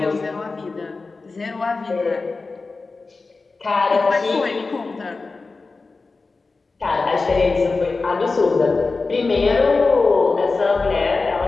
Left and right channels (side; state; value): right; quieter; 3.9 dB